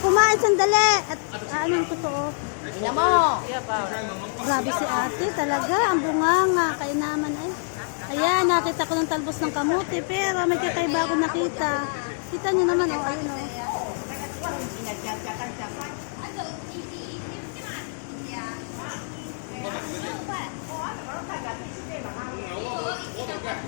sandali. At anong totoo? Ina mo! Grabe si ate talaga. Ang bunganga. Kaya naman ay. Ayan, nakita ko ng talbos ng kamuti. Pero may kakaiba ako nakita. Kita niyo naman, oh. Ayun, oh.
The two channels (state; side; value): silent; right; digital silence